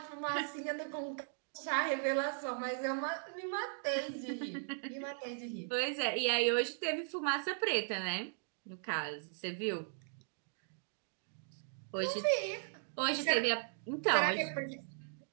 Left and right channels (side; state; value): left; silent; digital silence